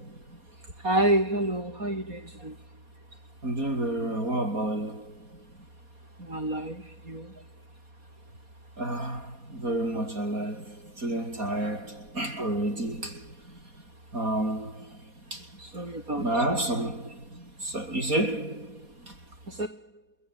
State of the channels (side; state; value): left; late; 4.2 ms